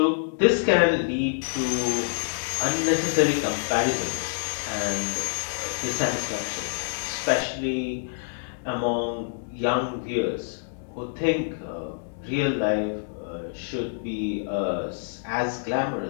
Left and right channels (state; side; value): silent; right; digital silence